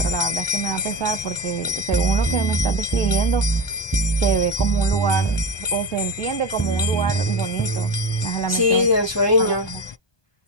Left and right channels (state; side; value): late; right; 1.2 ms